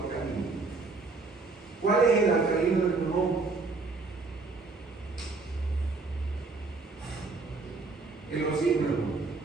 ¿Cuál es el alcalino del pulmón? El oxígeno.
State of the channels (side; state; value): left; quieter; 3.9 dB